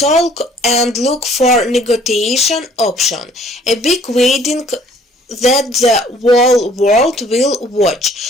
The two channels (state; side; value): normal; both; correlation 0.58